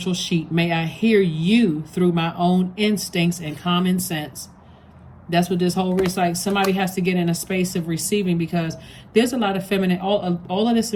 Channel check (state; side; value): identical; both; correlation 1.00